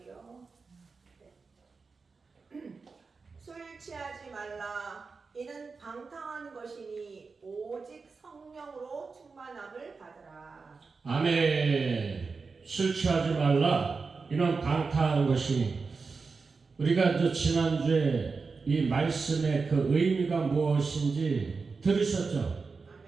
술 취하지 말라. 이는 방탕한 것이니 오직 성령으로 충만함을 받으라. 아멘. 술 취하지 말라. 이는 방탕한 것이니. 우리가 지난주에 이 말씀의 그 의미가 무엇인지 들으셨죠?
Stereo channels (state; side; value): quieter; left; 4.6 dB